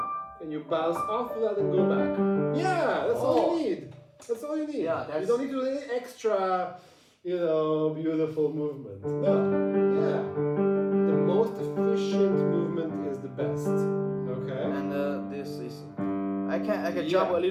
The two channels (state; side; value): identical; both; correlation 1.00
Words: and you bounce off of that and go back. Yeah, that's all you need. That's all you need. Yeah, you don't need to do any extra, beautiful movement. No. Yeah. The most efficient movement is the best. Okay. And this is, I can jump a